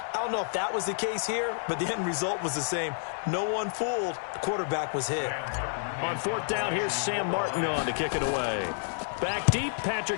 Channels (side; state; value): right; silent; digital silence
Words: I don't know if that was the case here, but the end result was the same. No one fooled. The quarterback was hit. On fourth down, here's Sam Martin on to kick it away. Back deep,